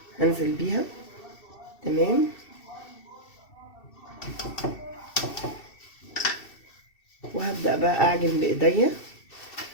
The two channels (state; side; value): late; right; 2.7 ms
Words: هنزل بيها. تمام. وهبدأ بقى اعجن بايديا.